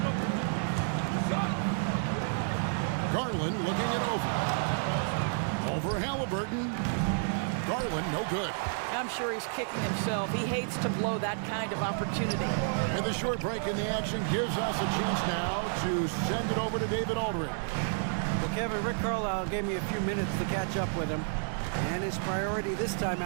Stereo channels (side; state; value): left; silent; digital silence